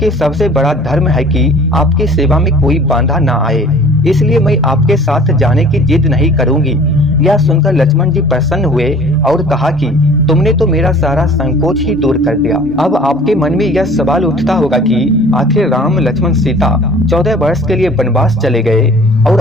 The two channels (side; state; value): both; normal; correlation 0.48